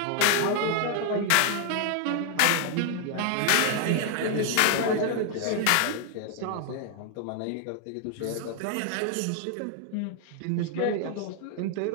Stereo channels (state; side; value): different; both; correlation 0.00